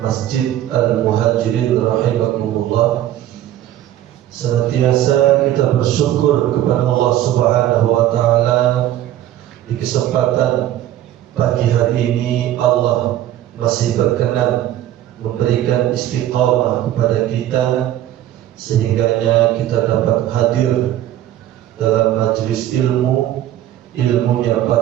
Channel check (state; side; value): quieter; left; 12.7 dB